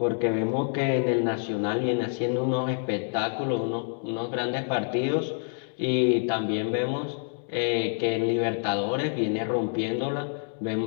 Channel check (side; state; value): right; silent; 60 dB below the other